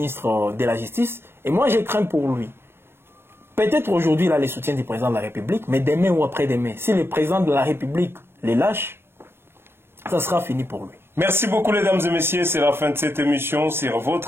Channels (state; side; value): late; left; 0.11 ms